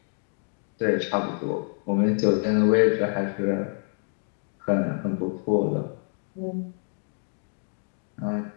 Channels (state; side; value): silent; right; 55 dB below the other